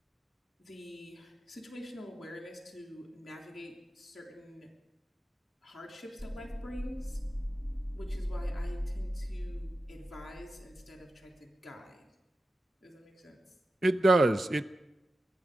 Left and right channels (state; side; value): normal; both; correlation 0.92